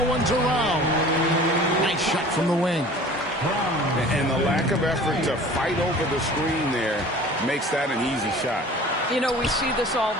one's around. Nice shot from the wing. And the lack of effort to fight over the screen there makes that an easy shot. You know, we see this all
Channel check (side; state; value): both; normal; correlation 0.44